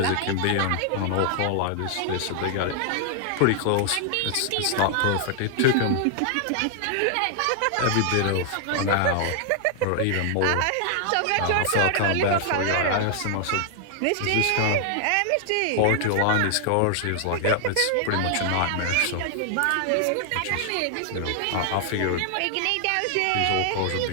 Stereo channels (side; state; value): both; different; correlation 0.00